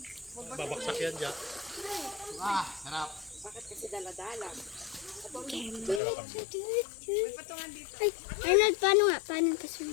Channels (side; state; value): right; drops out; at 6.0 s